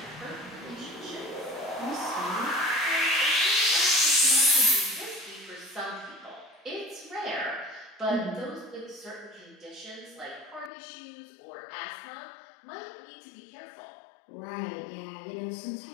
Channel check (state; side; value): drops out; right; at 10.7 s